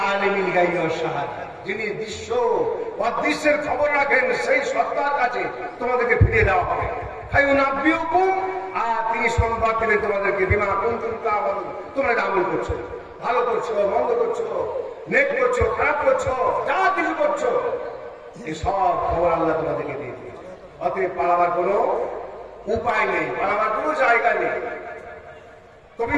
আলিমিল গায়বি ওয়াশ শাহাদা, যিনি দৃশ্য অদৃশ্যের খবর রাখেন, সেই সত্তার কাছে তোমাদেরকে ফিরিয়ে দেওয়া হবে। ফায়ুনাব্বিউকুম, আর তিনি সংবাদ দিলেন তোমাদেরকে, বিমা কুনতুম তা'মালুন, তোমরা আমল করছো, ভালো করছো, মন্দ করছো, নেক করছো, খারাপ করছো, যা কিছু করছো, এই সব খবর আল্লাহ তোমাদেরকে দিয়ে দিয়েছে। অতএব পালাবার কোনো উপায় নেই, পালাবার কোনো জায়গা নেই। কবি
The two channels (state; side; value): identical; both; correlation 1.00